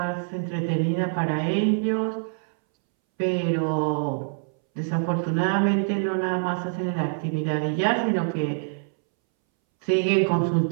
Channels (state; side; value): silent; left; 62 dB below the other